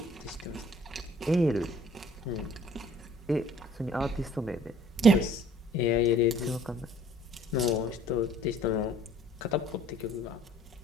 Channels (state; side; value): normal; both; correlation 0.55